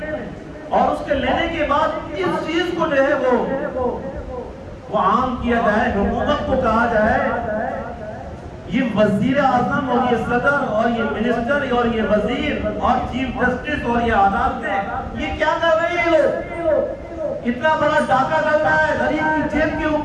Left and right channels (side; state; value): both; identical; correlation 1.00